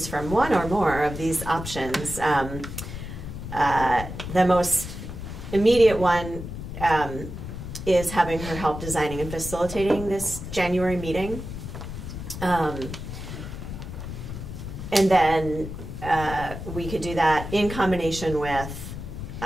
from one or more of these options. The most immediate one is having her help designing and facilitating this January meeting. And then we could do that in combination with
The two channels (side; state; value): left; noise; rumble, 8 dB below the sound